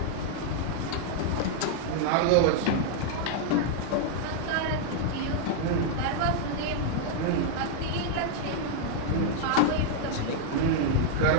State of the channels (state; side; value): different; both; correlation -0.01